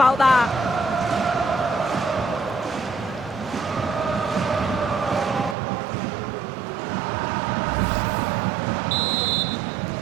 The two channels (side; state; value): left; drops out; at 5.6 s